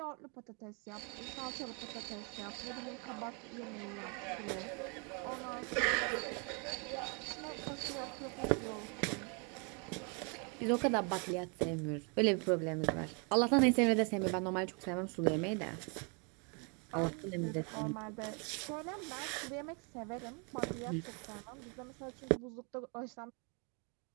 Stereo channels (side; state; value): left; quieter; 35.6 dB